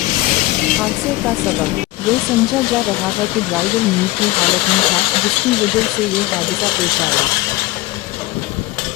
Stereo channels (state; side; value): quieter; right; 19.0 dB